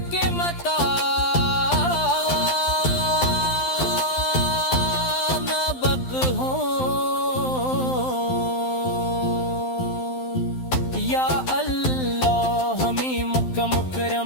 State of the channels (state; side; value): late; right; 12 ms